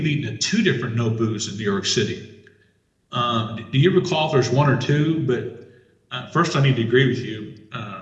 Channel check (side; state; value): both; identical; correlation 1.00